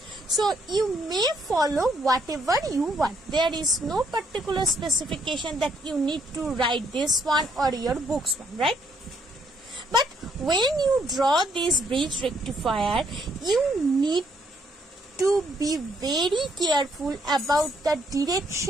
So you may follow whatever you want. There is no particular specification that you need to write this one or your book's one, right? But when you draw this bridge rectifier, you need to be very careful about the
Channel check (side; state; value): both; normal; correlation 0.70